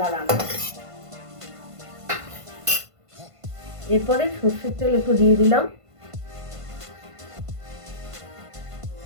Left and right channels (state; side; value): late; left; 1.5 ms